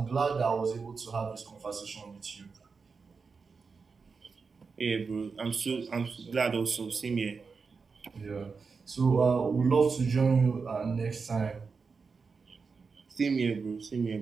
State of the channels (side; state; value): left; quieter; 5.0 dB